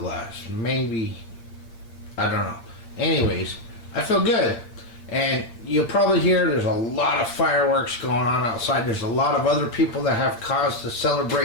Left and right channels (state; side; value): late; right; 8.6 ms